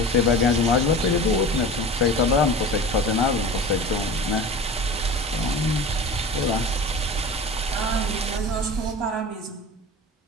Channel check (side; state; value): both; normal; correlation 0.35